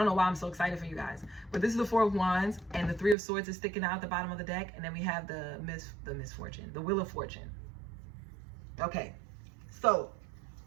know why I'm so excited for you guys. But this is the 4 of Wands, and the 3 of Swords is sticking out at the bottom of the deck. And then we have the misfortune, the Wheel of Fortune. Okay, so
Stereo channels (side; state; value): left; drops out; at 3.2 s